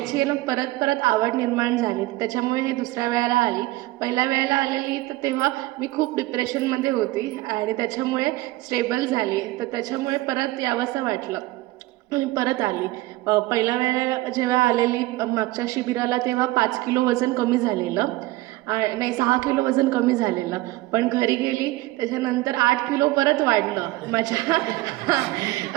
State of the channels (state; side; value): quieter; left; 18.9 dB